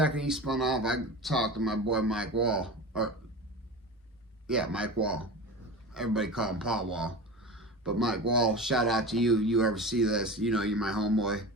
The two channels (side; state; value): both; normal; correlation 0.30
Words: he spun off, I talked to my boy Mike Wall. Mike Wall. Everybody call him Paul Wall. But Mike Wall, shout out to you. You ever see this, you know, you're my homeboy.